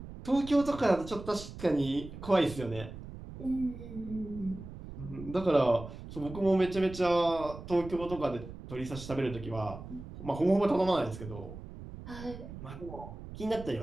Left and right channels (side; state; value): right; noise; rumble, 12 dB below the sound